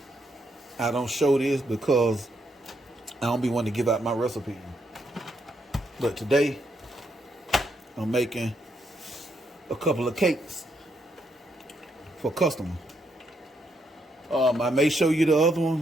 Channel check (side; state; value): both; normal; correlation 0.77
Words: I don't show this because I don't be wanting to give out my recipe. But today I'm making a couple of cakes for customers. I may show you the other